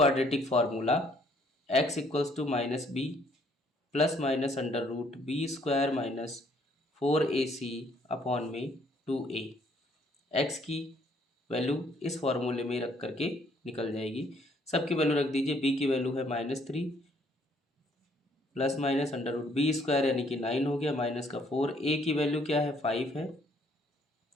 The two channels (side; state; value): both; normal; correlation 0.65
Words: formula x equals to minus b plus minus under root b² minus 4ac upon में 2a। x की वैल्यू इस फार्मूले में रख करके निकल जाएगी, सबकी वैल्यू रख दीजिए। b की वैल्यू है -3 plus minus under root b square यानी कि 9 हो गया, माइनस का 4, ए की वैल्यू क्या है 5 है,